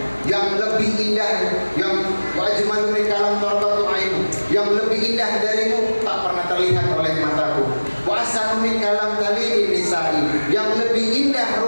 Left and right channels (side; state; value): both; inverted; correlation -1.00